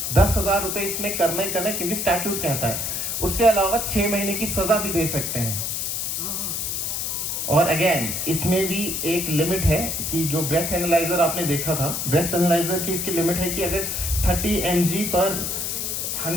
10,000 रुपये इसमें करना ही करना है, क्योंकि स्टैट्यूट कहता है। उसके अलावा 6 महीने की सजा भी दे सकते हैं। और अगेन इसमें भी एक लिमिट है कि जो ब्रेथ एनालाइजर आपने देखा था, ब्रेथ एनालाइजर की इसकी लिमिट है कि अगर 30 mg पर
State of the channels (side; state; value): left; noise; hiss, 2 dB below the sound